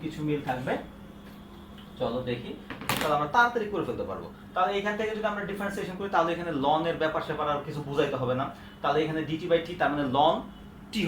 কিছু মিল থাকবে, চলো দেখি, তাহলে আমরা তাড়াতাড়ি করে ফেলতে পারবো। তাহলে এখান থেকে যদি আমরা ডিফারেন্সিয়েশন করি তাহলে এখানে লন এর ব্যাপার স্যাপার আর কিছু বুঝাইতে হবে না। তাহলে এখানে ডিটি বাই টি তার মানে লন টি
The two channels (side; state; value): both; identical; correlation 1.00